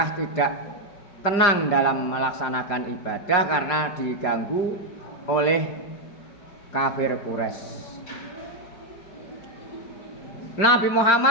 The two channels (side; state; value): right; late; 5.0 ms